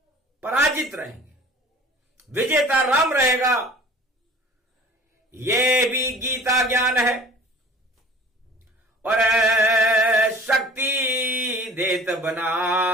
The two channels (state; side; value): normal; both; correlation 0.45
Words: पराजित रहेंगे, विजेता राम रहेगा। ये भी गीता ज्ञान है और शक्ति देत